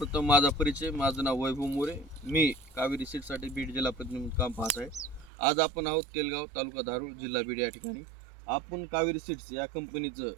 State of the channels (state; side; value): drops out; left; at 5.3 s